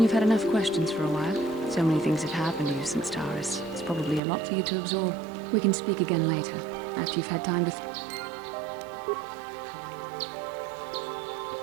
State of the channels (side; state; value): left; drops out; at 4.2 s